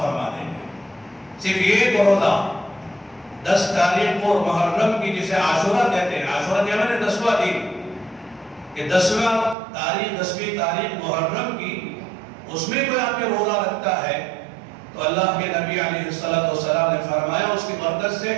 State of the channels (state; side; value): drops out; left; at 9.6 s